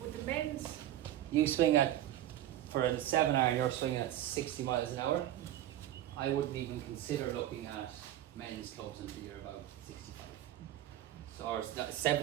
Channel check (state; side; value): quieter; left; 12.7 dB